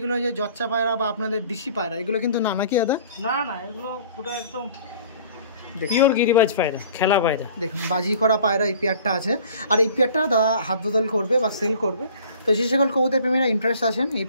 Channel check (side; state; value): both; inverted; correlation -0.49